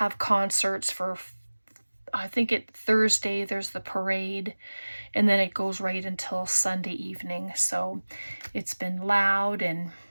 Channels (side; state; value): both; inverted; correlation -1.00